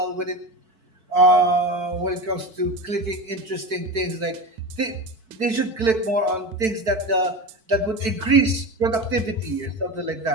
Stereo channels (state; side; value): late; left; 4.6 ms